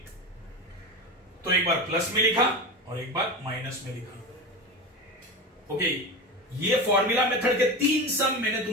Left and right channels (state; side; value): normal; both; correlation 0.24